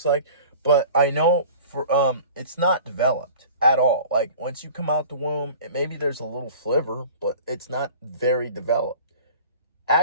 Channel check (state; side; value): inverted; both; correlation -0.43